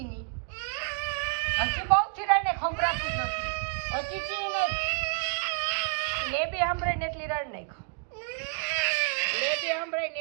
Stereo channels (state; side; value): quieter; left; 39.3 dB